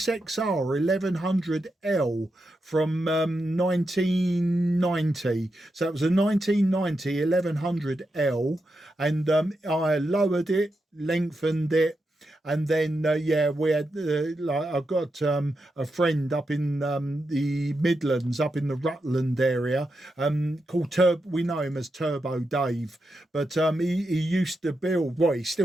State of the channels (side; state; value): both; normal; correlation 0.86